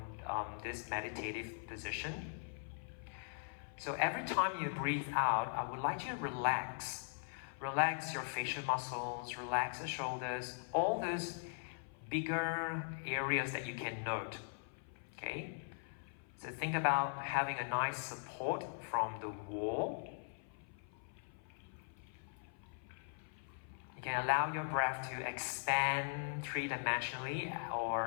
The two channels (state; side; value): silent; right; 51 dB below the other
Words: this meditative position. So every time you breathe out, I would like you to relax. Relax your facial muscles, relax the shoulders, all those bigger areas that you can note. Okay? So think about having a nice support from the wall. You can allow your breath to expand three-dimensionally